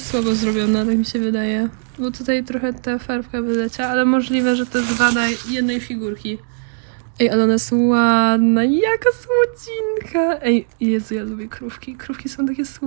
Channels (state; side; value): silent; left; digital silence